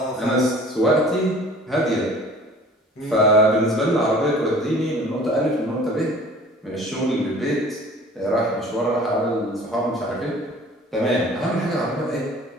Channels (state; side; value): normal; both; correlation 0.47